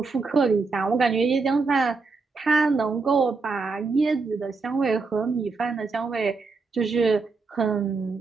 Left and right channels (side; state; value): left; quieter; 4.3 dB